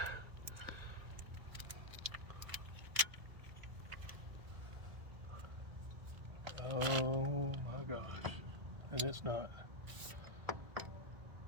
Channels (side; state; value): left; late; 1.6 ms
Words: Oh my gosh, and it's not.